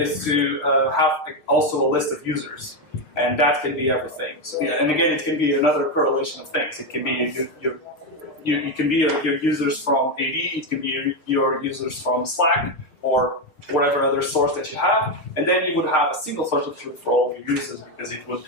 to have also a list of users. And that can be everything. So, yeah, and again, it can be another correlation of things. It can be you can be your users from AD, it can be your users from Slack, or whatever other source that you have, and then you would have a single source of truth for all of your users because it would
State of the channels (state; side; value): late; right; 6.6 ms